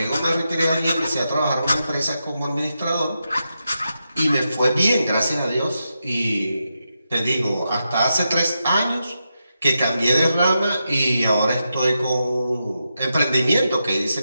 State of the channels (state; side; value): inverted; both; correlation -0.87